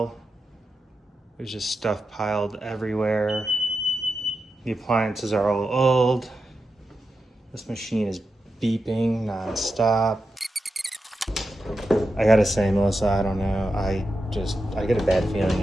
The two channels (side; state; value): both; normal; correlation 0.89